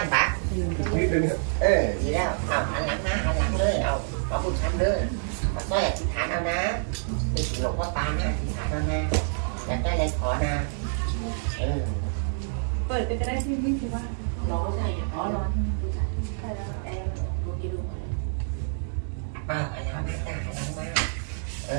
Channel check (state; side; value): silent; left; digital silence